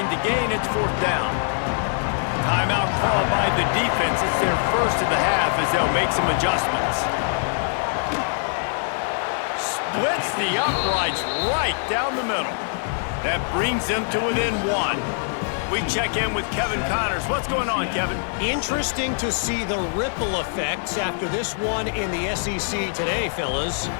to gain. It's 4th down. Timeout called by the defense. It's their first of the half as they'll make some adjustments. Splits the uprights right down the middle. That brings them to within 1. We check in with Kevin Connors. What's going on, Kevin? Interesting to see the ripple effects after this one in the SEC today, fellas.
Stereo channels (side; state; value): right; silent; digital silence